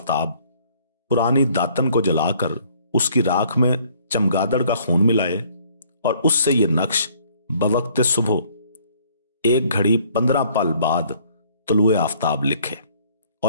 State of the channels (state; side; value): inverted; both; correlation -0.60